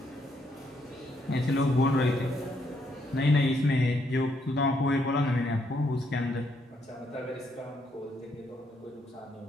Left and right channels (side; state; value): both; normal; correlation 0.74